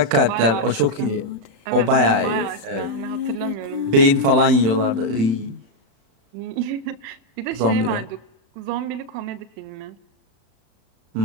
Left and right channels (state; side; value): late; left; 35 ms